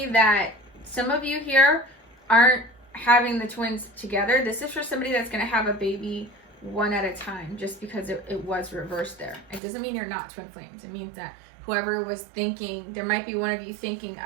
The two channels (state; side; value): drops out; left; at 9.6 s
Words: that some of you here aren't having the twins together. This is for somebody that's going to have a baby one at a time, just because it was reversed there. It doesn't mean you're not twin flames. It means that whoever was thinking, there might be one of you thinking,